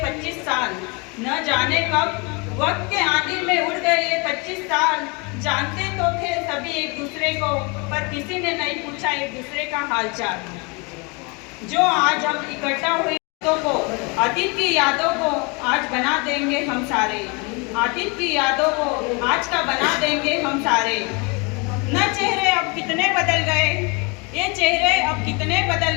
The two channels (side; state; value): right; quieter; 30.4 dB